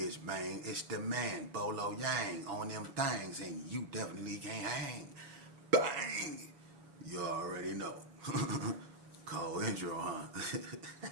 man. It's the man, Bolo Yang, on them things, and you definitely can't hang. Bang! You already know. Call intro, huh?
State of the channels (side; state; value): left; late; 7.1 ms